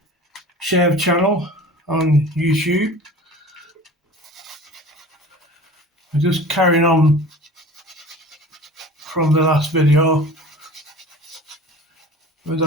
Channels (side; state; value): both; normal; correlation 0.40